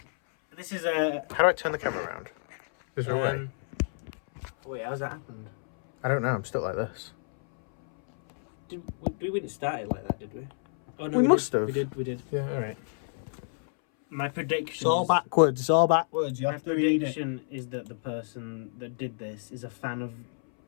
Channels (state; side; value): silent; right; 59 dB below the other